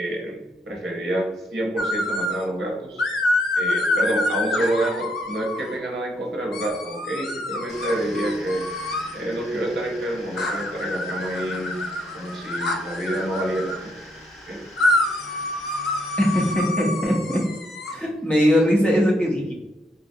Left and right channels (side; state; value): both; normal; correlation 0.74